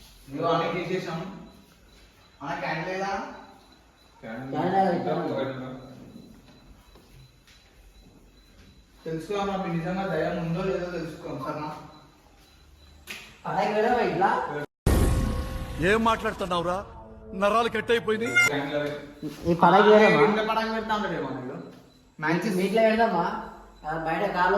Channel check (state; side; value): identical; both; correlation 1.00